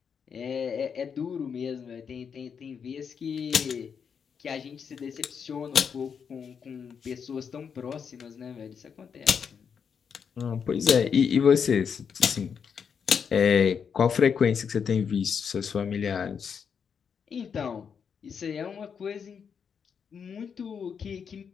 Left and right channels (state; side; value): quieter; right; 6.8 dB